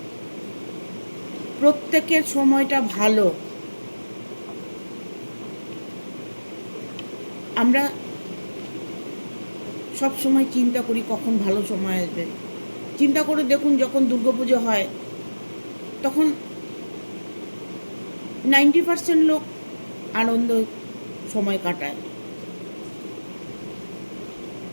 প্রত্যেকের সময়টা ভালো। আমরা সব সময় চিন্তা করি কখন ভালো সময় আসবে। চিন্তা করে দেখুন, যখন দুর্গাপুজো হয় তখন 90% লোক আনন্দ সময় কাটায়,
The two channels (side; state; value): both; inverted; correlation -1.00